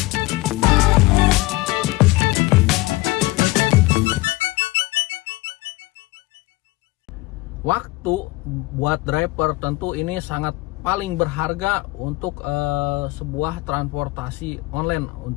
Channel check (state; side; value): quieter; right; 21.3 dB